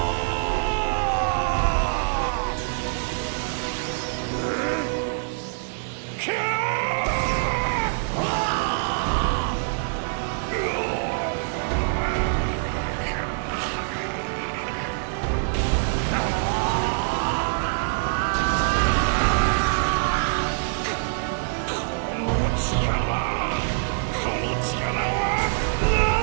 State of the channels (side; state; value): left; silent; digital silence